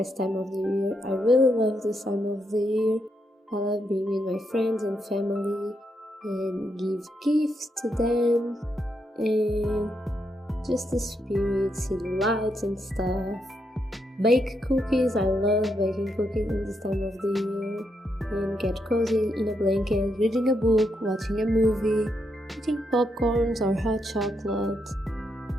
time of the year. I really love this time of the year. I love being with my friends and family and give gifts to them and just the spirit, see the lights and stuff. Bake cookies, I love baking cookies in this time of the year. And get cozy in a blanket, reading a book, watching a movie, eating popcorns or hot chocolate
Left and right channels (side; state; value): both; normal; correlation 0.80